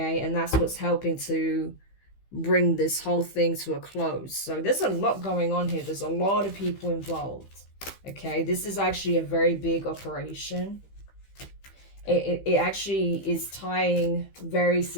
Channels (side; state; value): right; late; 15 ms